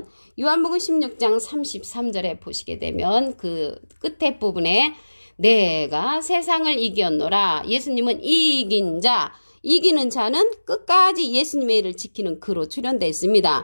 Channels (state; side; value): inverted; both; correlation -1.00